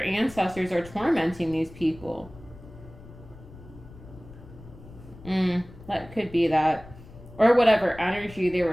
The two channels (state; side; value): noise; left; rumble, 19 dB below the sound